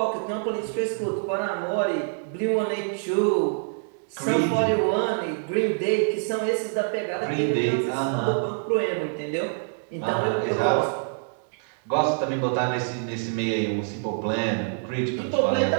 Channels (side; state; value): left; silent; 61 dB below the other